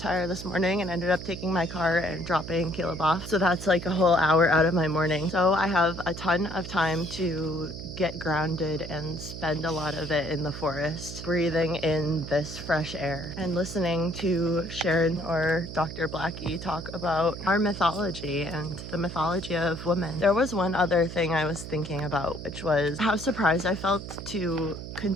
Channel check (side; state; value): right; noise; hum, 10 dB below the sound